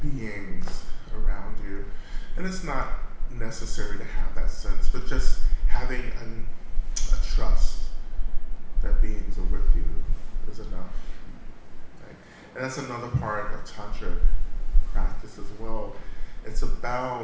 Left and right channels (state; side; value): identical; both; correlation 1.00